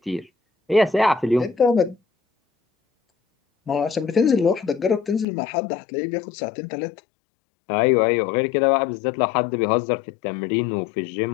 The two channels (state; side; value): drops out; right; at 5.2 s